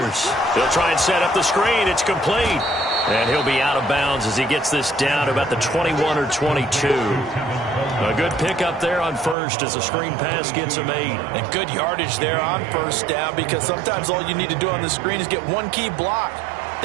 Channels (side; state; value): left; drops out; at 9.3 s